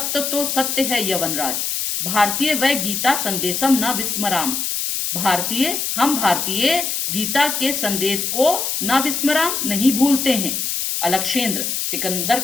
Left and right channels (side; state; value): left; noise; hiss, 1 dB below the sound